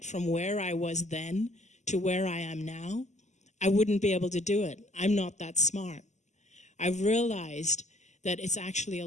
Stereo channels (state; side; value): late; right; 0.34 ms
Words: from where I was then to where I am now, I wouldn't be able to do it. I'm not that smart. I've realized that it's actually a